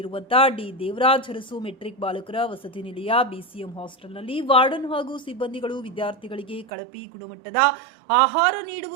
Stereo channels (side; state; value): left; drops out; at 6.7 s